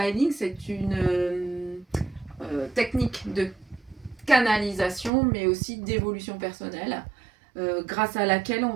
Healing, c'est une technique de canalisation, mais aussi d'évolution personnelle, grâce à laquelle on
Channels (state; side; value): drops out; left; at 5.1 s